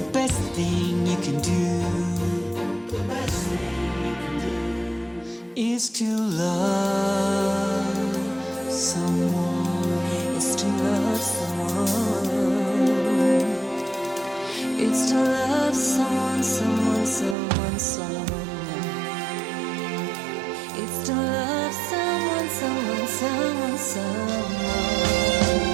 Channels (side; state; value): left; drops out; at 17.4 s